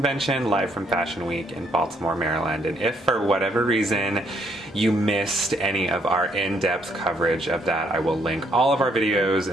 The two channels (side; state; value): both; normal; correlation 0.70